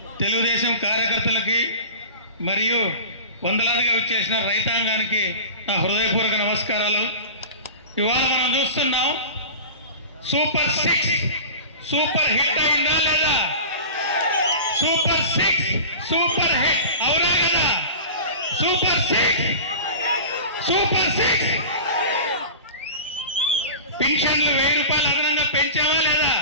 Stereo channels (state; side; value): inverted; both; correlation -0.34